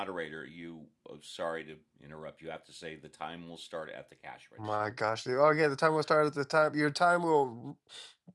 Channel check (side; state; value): both; identical; correlation 1.00